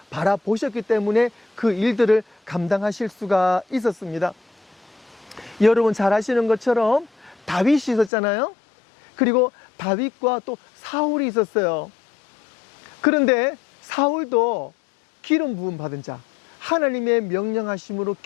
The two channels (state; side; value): drops out; right; at 8.1 s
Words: 바라보셨기 때문에 그 일들을 감당하실 수가 있었습니다. 여러분 잘 아시는 것처럼 다윗이 있었잖아요. 그리고 다윗과 또 사울이 있었어요. 그런데 사울도 기름 부음 받은 자, 하나님의 명령하심으로